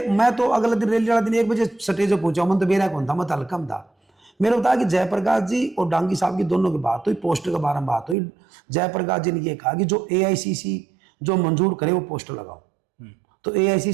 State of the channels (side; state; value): left; drops out; at 8.2 s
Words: तो अगले दिन रैली वाला दिन 1 बजे स्टेज पर पहुंचा, मन तो मेरा कौन था, मैं तो हल्कम था। मेरे को बताया कि जयप्रकाश जी और डांगी साहब की दोनों की बात हुई, पोस्टर के बारे में बात हुई। जयप्रकाश जी ने ये कहा कि जो एआईसीसी जो मंजूर करे वो पोस्टर लगाओ, तो